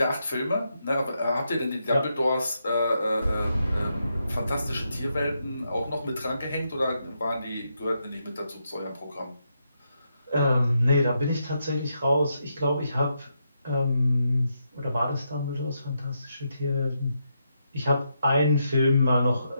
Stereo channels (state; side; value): inverted; both; correlation -0.82